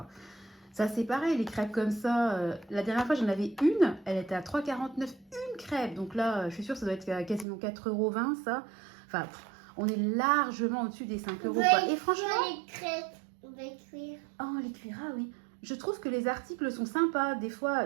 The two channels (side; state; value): left; drops out; at 7.5 s